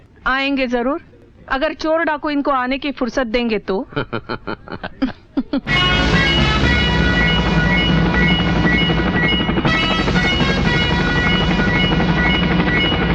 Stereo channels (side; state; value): both; identical; correlation 1.00